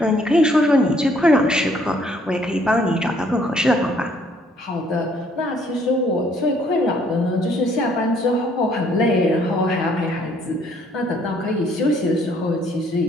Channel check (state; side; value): normal; both; correlation 0.64